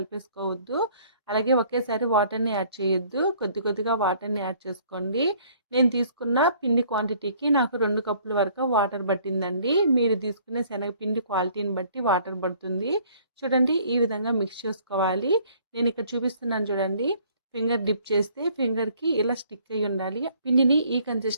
అలాగే ఒకేసారి వాటర్ని యాడ్ చేయొద్దు. కొద్దిగా వాటర్ని యాడ్ చేసుకోండి. నేను తీసుకున్న పిండి క్వాంటిటీకి నాకు 2 కప్పుల వరకు వాటర్ పట్టిందండి. మీరు తీసుకునే శనగపిండి క్వాలిటీని బట్టి వాటర్ పడుతుంది. చూడండి, ఈ విధంగా మిక్స్ చేసుకోవాలి. నేను ఇక్కడ చూపిస్తున్నాను చూడండి. ఫింగర్ డిప్ చేస్తే ఫింగర్కి ఇలా స్టిక్ అయి ఉండాలి. పిండిని ఈ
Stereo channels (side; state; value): both; inverted; correlation -0.58